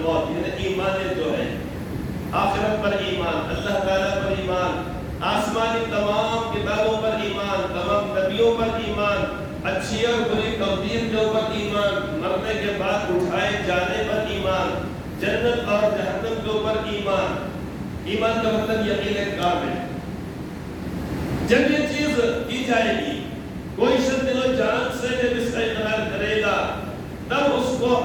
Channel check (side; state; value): both; identical; correlation 1.00